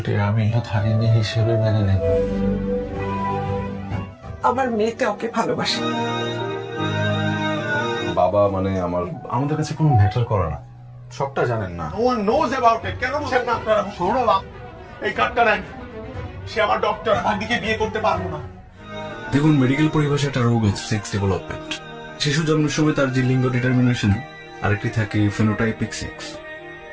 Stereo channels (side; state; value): both; identical; correlation 1.00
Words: আমি ধারিনী হিসেবে মেনে নেব। আমার মেয়েতে ওকে ভালোবাসে। বাবা মানে আমাদের কাছে কোনো ম্যাটার করে না। সবটা জানেন না। No one knows about it. কেন বলছেন না আপনারা? সৌরভ এই কার্ডটা নেন। সে আমার ডক্টর, ভাগ্নিকে বিয়ে করতে পারবো না। দেখুন, মেডিকেল পরিভাষায় একটা রোগ আছে সেক্স ডেভেলপমেন্ট। শিশু জন্মের সময় তার যে লিঙ্গ ডিটারমিনেশন, আরেকটি থাকে ফেনোটাইপিক সেক্স,